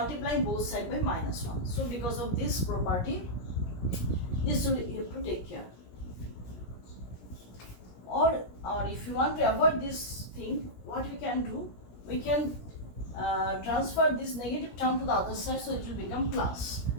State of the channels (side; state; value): right; late; 17 ms